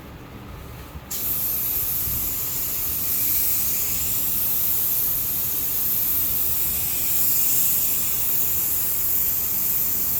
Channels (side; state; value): both; identical; correlation 1.00